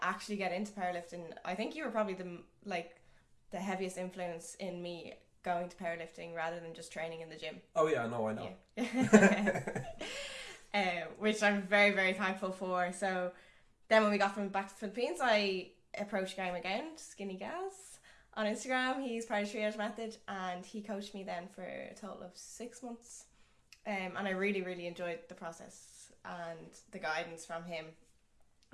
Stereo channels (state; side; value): identical; both; correlation 1.00